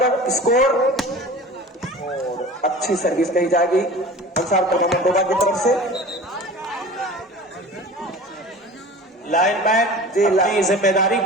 स्कोर, और अच्छी सर्विस कही जाएगी अंसार क्लब अहमदोबा की तरफ से। लाइनमैन अपनी जिम्मेदारी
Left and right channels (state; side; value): normal; both; correlation 0.39